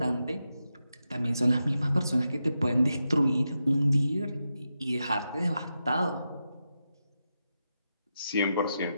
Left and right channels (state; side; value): inverted; both; correlation -0.88